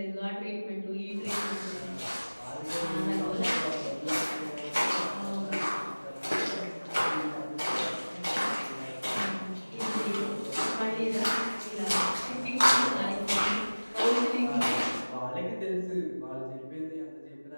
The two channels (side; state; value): both; inverted; correlation -1.00